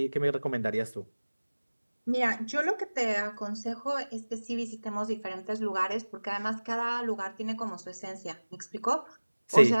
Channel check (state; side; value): inverted; both; correlation -1.00